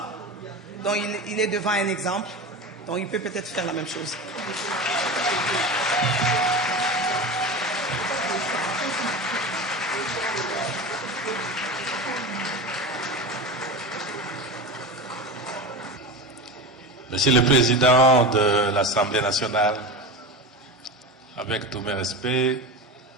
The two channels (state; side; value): normal; both; correlation 0.26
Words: Donc il est devant un exemple. Donc il peut peut-être faire la même chose. Monsieur le Président de l'Assemblée nationale, avec tous mes respects,